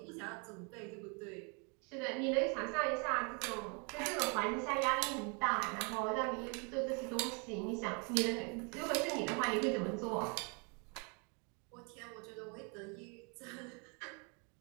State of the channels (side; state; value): left; quieter; 34.8 dB